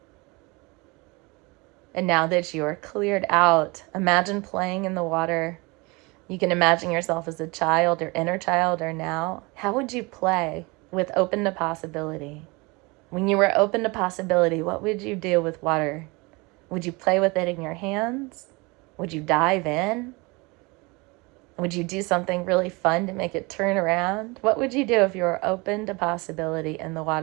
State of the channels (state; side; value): quieter; left; 26.1 dB